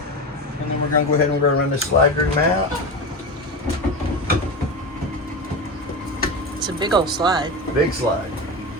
And then we're going to go ahead and we're going to run this slide room out. It's a big old slide. Big slide.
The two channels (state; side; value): normal; both; correlation 0.21